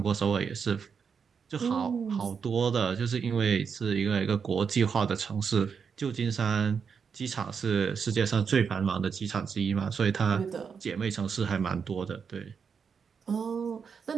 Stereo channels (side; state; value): left; quieter; 6.3 dB